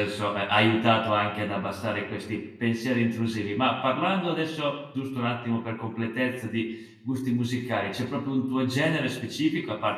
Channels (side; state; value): both; identical; correlation 1.00